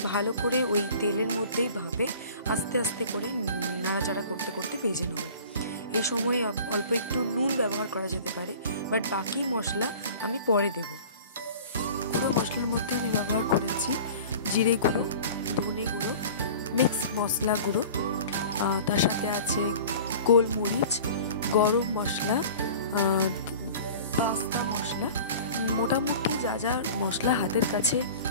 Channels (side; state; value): both; inverted; correlation -0.42